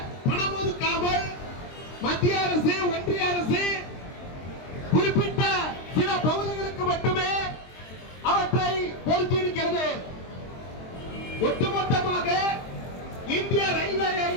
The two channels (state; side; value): late; right; 23 ms